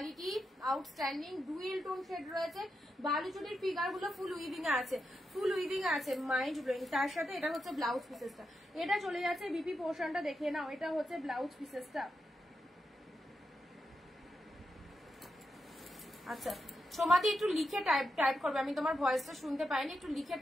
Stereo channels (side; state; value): both; normal; correlation 0.86